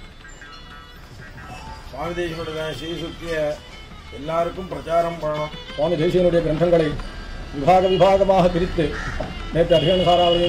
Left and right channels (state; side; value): identical; both; correlation 1.00